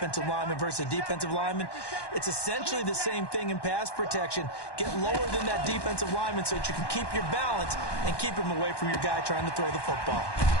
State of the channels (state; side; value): late; right; 1.1 ms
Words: lineman versus a defensive lineman. It's essentially the same thing in pass protection. Get lower than that defensive lineman so that you can keep your balance and keep him away from your guy trying to throw the football.